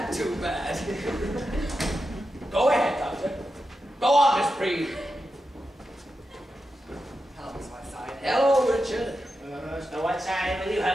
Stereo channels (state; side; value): normal; both; correlation 0.89